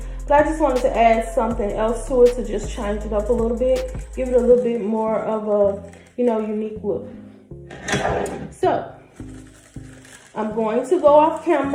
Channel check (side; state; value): both; identical; correlation 1.00